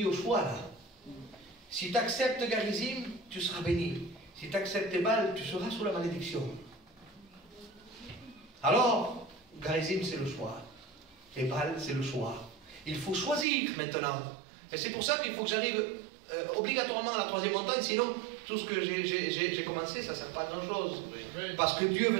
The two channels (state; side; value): drops out; left; at 13.5 s